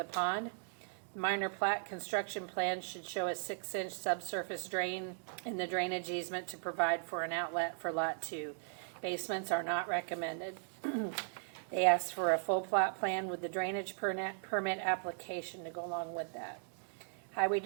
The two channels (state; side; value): silent; left; digital silence